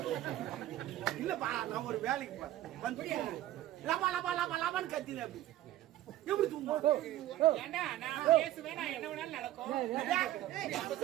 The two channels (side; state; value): left; quieter; 14.1 dB